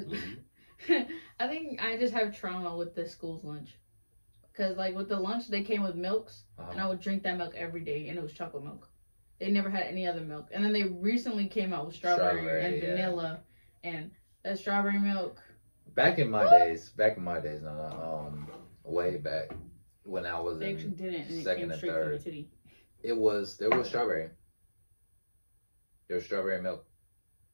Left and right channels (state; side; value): inverted; both; correlation -1.00